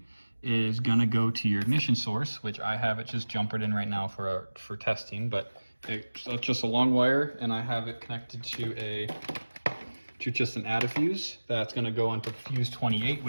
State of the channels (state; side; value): inverted; both; correlation -1.00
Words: is going to go to your ignition source, which I have it just jumpered in right now for testing, but it's just a long wire, and I have it connected to just an add-a-fuse that's going to go onto fuse 28,